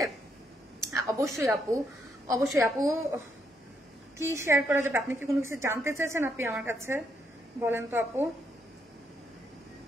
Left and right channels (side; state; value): both; normal; correlation 0.76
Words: অবশ্যই আপু, অবশ্যই আপু। কি শেয়ার করা যাবে? আপনি কি কোনো কিছু জানতে চাইছেন আপনি আমার কাছে বলেন তো আপু?